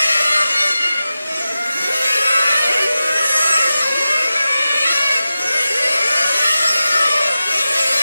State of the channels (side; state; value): both; inverted; correlation -0.93